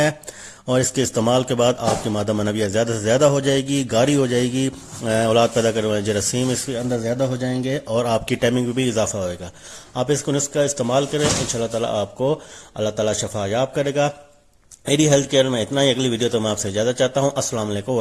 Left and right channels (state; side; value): identical; both; correlation 1.00